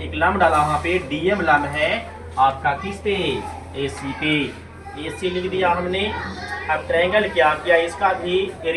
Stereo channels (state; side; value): identical; both; correlation 1.00